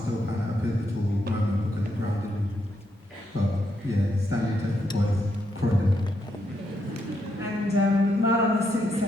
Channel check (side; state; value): both; normal; correlation 0.79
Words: pan at a pivotal moment because it grounded me. But yeah, Stanley Tech boys, Croydon. And Marlon has since